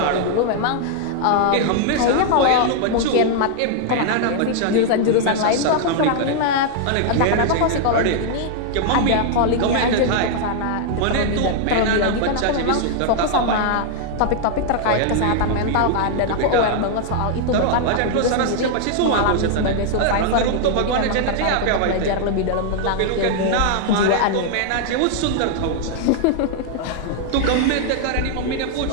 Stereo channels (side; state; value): both; different; correlation 0.00